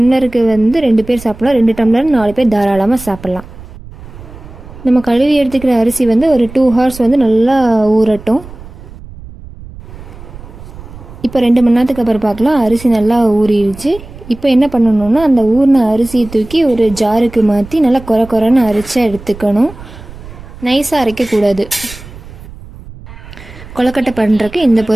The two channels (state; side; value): noise; right; rumble, 17 dB below the sound